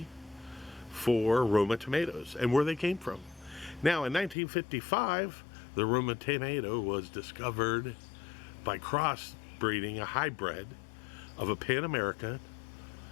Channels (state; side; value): drops out; right; at 4.4 s